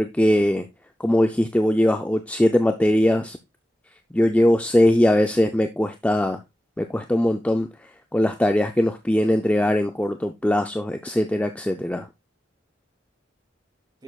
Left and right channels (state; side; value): normal; both; correlation 0.94